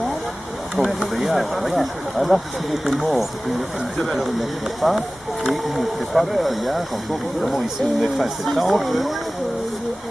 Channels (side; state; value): both; normal; correlation 0.97